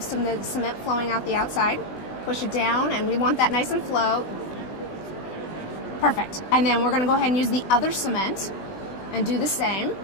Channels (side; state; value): right; late; 20 ms